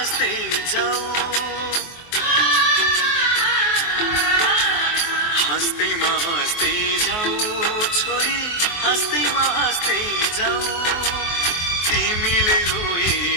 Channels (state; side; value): late; right; 24 ms